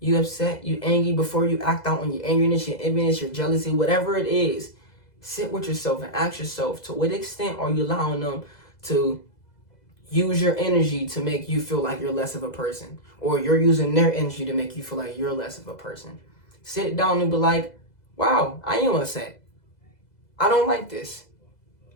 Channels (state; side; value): late; right; 2.0 ms